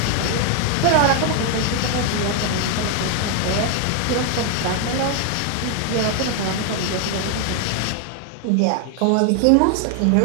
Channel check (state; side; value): different; both; correlation 0.00